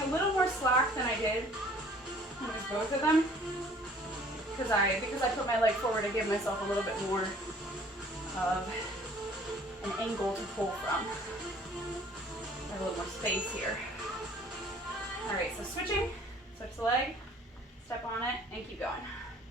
a little more slack than I did when it was both of them. Because I put my leg forward, I gave myself a little bit more of an angle to pull from. I have a little more space here. All right, so switch the leg, step on it, and keep going.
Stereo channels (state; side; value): normal; both; correlation 0.54